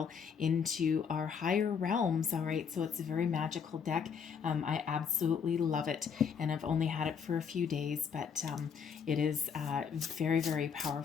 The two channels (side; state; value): right; quieter; 6.7 dB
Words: into our higher realms. All right, so it's a very magical deck. I absolutely love it, and I've only had it for a few days, but it is very, very